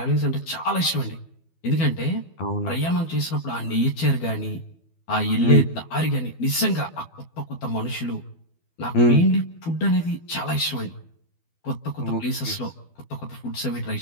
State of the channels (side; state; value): right; late; 12 ms